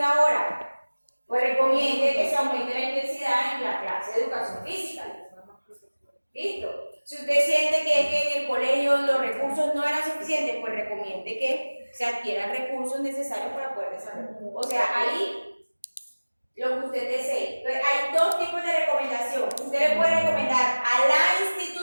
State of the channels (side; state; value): both; inverted; correlation -1.00